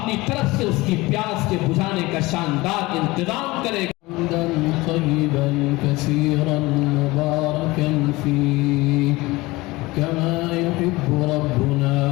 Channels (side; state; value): right; quieter; 21.2 dB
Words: طرف سے اس کی پیاس کے بجھانے کا شاندار انتظام کرے گا۔ حمدا طیبا کثیرا مبارکا فیہ کما یحب ربنا